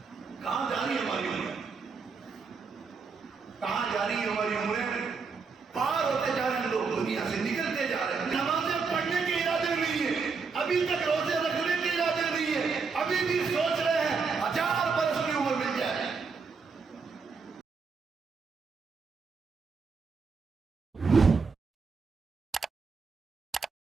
کہاں جا رہی ہے ہماری عمریں؟ کہاں جا رہی ہے ہماری عمریں؟ پار ہوتے جا رہے ہیں لوگ، دنیا سے نکلتے جا رہے ہیں۔ نمازیں پڑھنے کے ارادے نہیں ہے، ابھی تک روزے رکھنے کے ارادے نہیں ہے، ابھی بھی سوچ رہے ہیں 1000 برس کی عمر مل جائے۔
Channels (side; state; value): left; quieter; 5.0 dB